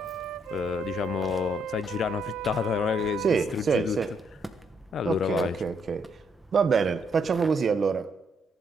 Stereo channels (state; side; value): normal; both; correlation 0.73